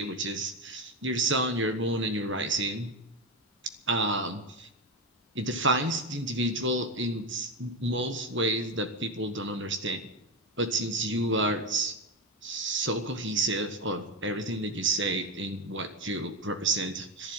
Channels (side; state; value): both; normal; correlation 0.13